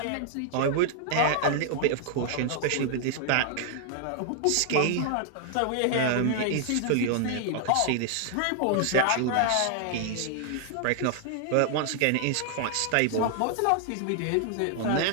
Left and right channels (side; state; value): both; different; correlation 0.00